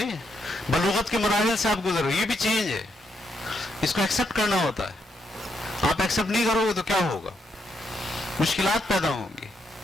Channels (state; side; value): normal; both; correlation 0.78